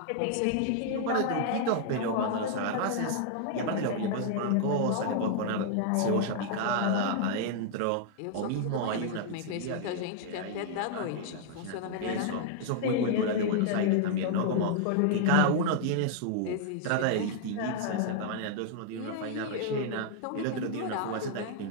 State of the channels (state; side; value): different; both; correlation -0.01